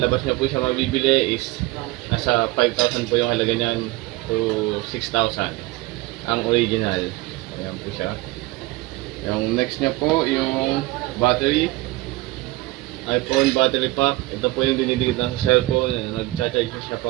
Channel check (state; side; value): quieter; left; 20.0 dB